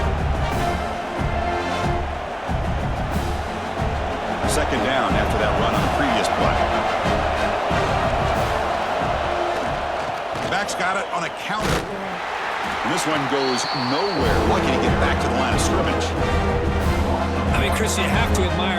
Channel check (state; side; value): identical; both; correlation 1.00